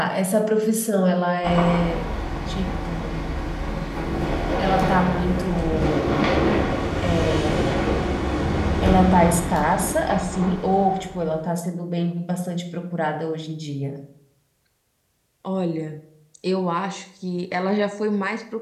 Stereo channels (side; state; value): both; identical; correlation 1.00